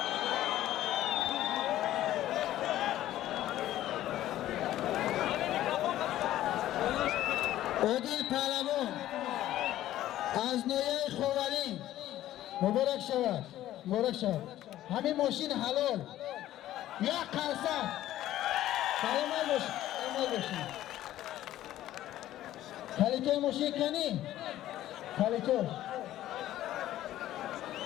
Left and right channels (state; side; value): quieter; right; 13.6 dB